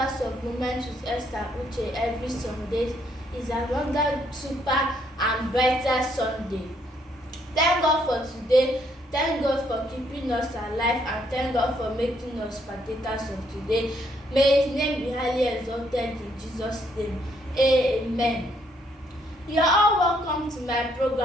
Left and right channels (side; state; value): both; normal; correlation 0.71